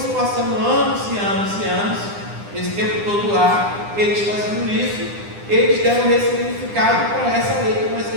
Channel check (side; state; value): left; late; 9.9 ms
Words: passando anos e anos e anos, esse tempo todo lá, eles fazendo isso, eles deram ressignificado para essa lei que